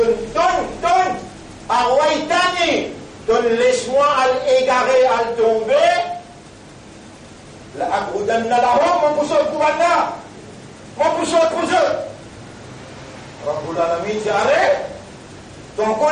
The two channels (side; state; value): both; identical; correlation 1.00